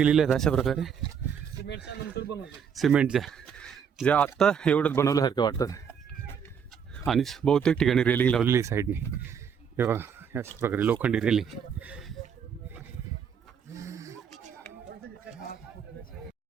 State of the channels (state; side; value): quieter; left; 7.3 dB